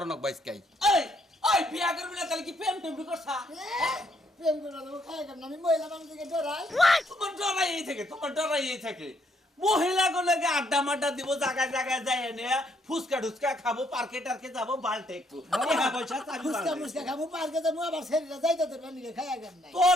নক বাইস কাই এই ওই বিয়া করবি না তাহলে কি প্রেম টেম করছা প্রেম করে দেবো খাই কেন আমি মহিলা মানুষকে ডরাই তোমার ডরাই থাকে মহিলা গুলোকে আড্ডা মাড্ডা দিব জায়গায় জায়গায় যাই এনে ফুচকা টুচকা খাবো পার্কে টার্কে যাবো বালটে একটু ফুচকা মুচকা খাবো পার্কে যাবো আবার শরীরে যাইতে তোর নিকে খাই কেন নাই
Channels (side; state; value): both; normal; correlation 0.71